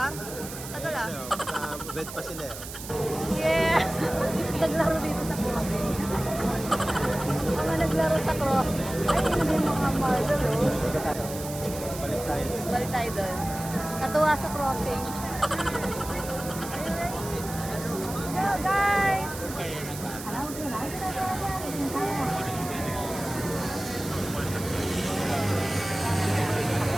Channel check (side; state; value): right; noise; hiss, 11 dB below the sound